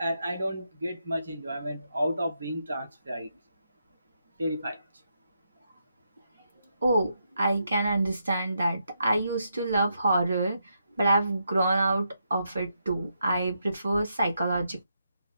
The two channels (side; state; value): both; inverted; correlation -0.81